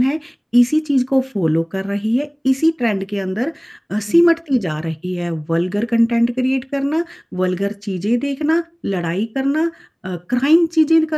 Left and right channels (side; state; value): both; identical; correlation 1.00